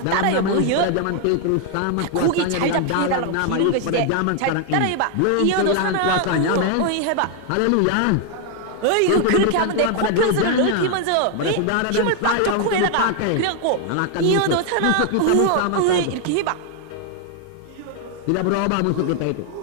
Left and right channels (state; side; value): different; both; correlation 0.00